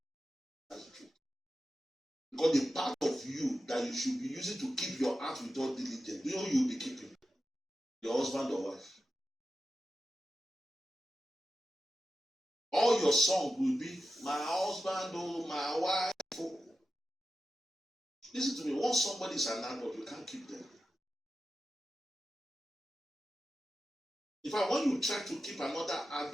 That's the truth. Because the part of you that you should be using to keep your heart with all diligence, you know you'll be keeping your husband or wife. All your song will be, my husband, oh, my wife. Oh. Listen to me, once somebody is an adult, you can't keep them. In fact, when you try to keep another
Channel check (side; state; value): both; normal; correlation 0.91